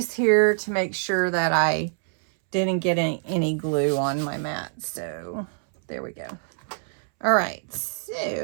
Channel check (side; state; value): left; silent; 62 dB below the other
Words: here to make sure that I didn't get any glue on my mat. So there we go. All right,